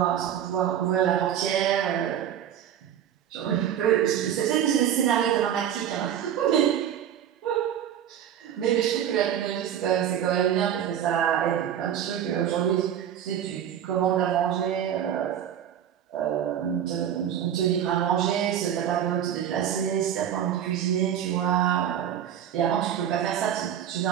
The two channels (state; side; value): quieter; left; 9.9 dB